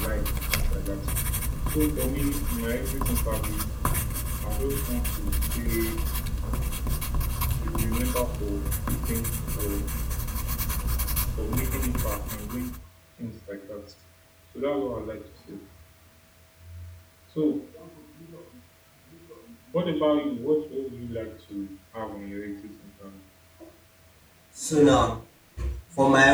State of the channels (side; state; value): both; identical; correlation 1.00